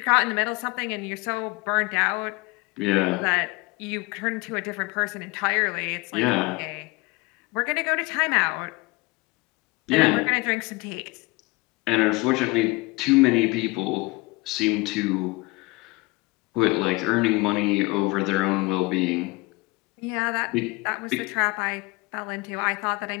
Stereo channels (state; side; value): quieter; right; 24.4 dB